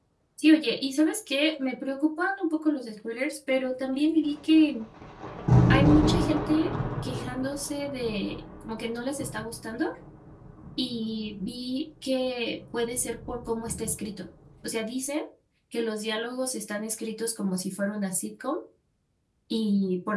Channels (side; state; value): both; identical; correlation 1.00